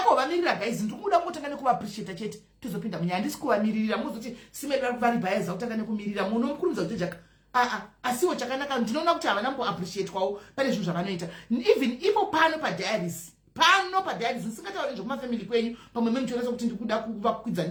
kuvamirira guys ndiri kuda kutanga nekuvaappreciate chete tozopinda munyaya handisi kuvamiririra muzoti simeri vari bhayaza kutanga nekumirira munomukurumidza kuti jaka asiwo chakanaka ndinoona kuti havana kuappreciate kwawo pane zvinhu zvavanoita even ipo pano padiaries nisingatauri nezvekumafamily kwenyu pamwe memuchionesa kuti ndiri kuda kuvakwidza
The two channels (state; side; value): identical; both; correlation 1.00